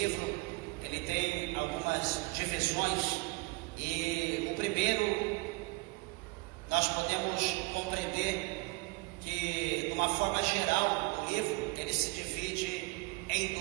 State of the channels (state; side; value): quieter; left; 26.4 dB